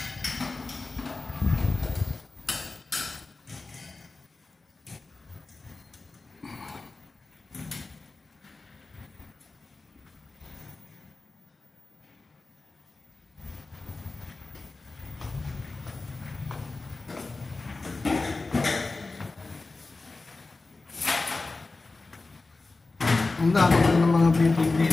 Ang dami ng mga building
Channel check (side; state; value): right; quieter; 3.5 dB